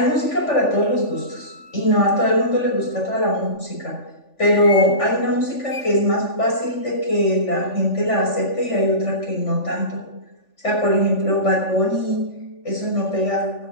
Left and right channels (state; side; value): late; right; 3.5 ms